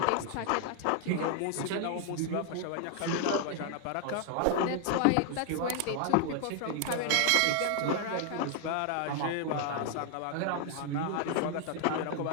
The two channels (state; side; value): different; both; correlation 0.00